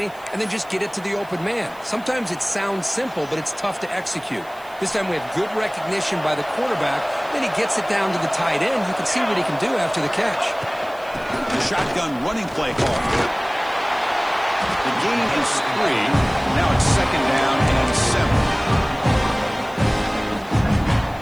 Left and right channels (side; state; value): right; noise; hiss, 25 dB below the sound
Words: and then just get it to the open man. Sometimes it sounds simple, but it's tough to execute. This time we have good recognition by the quarterback. Then he gets it down to the tight end. You can see what he can do after the catch. The shotgun running play call. The gain is 3. Now it's second down and 7.